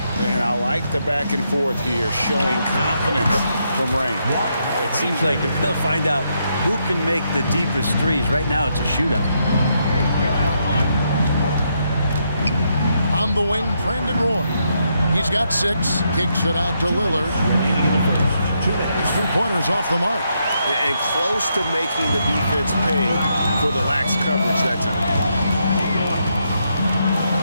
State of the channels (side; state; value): both; inverted; correlation -0.79